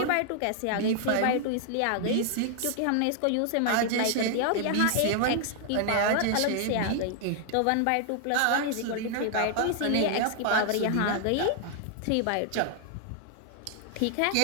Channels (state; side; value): different; both; correlation 0.00